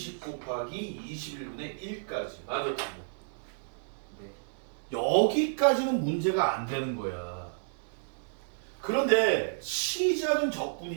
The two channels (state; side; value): silent; left; 57 dB below the other